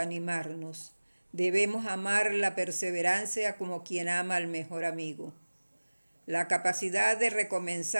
Debemos amar la perseverancia como quien ama al mejor amigo. La capacidad de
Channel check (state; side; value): inverted; both; correlation -1.00